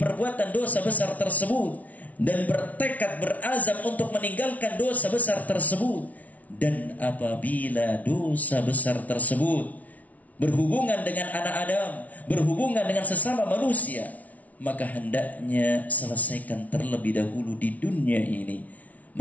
dosa besar tersebut dan bertekad, berazam untuk meninggalkan dosa besar tersebut. Dan apabila dosa besar tersebut berhubungan dengan anak Adam, berhubungan dengan sesama manusia, maka hendaknya selesaikan terlebih dahulu di dunia ini.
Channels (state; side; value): late; right; 0.071 ms